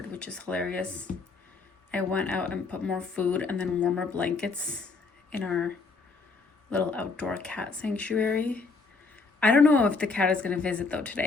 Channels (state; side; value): quieter; right; 4.2 dB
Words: which is hilarious. I went out and put more food and then warmer blankets in our little outdoor cat sanctuary. I don't know if the cat is gonna visit though